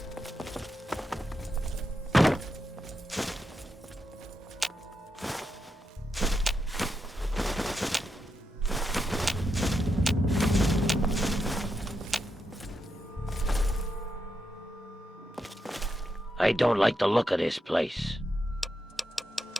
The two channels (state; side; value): normal; both; correlation 0.85